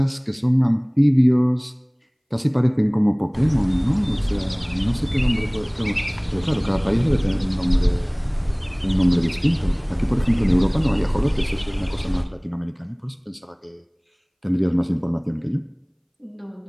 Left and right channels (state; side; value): identical; both; correlation 1.00